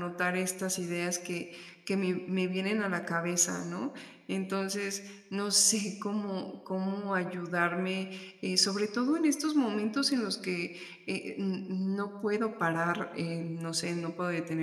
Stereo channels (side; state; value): both; identical; correlation 1.00